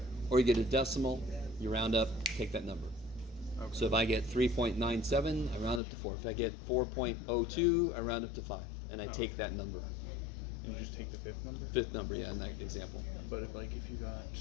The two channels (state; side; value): drops out; right; at 5.8 s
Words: or you get a decimal, you round up, take that number. Okay. So if I get 3.97, I round up to 4. If I get 4.02, I round up to 5, and I take that number. And you just take the fifth number? Fifth number, yeah, in that example. But if you got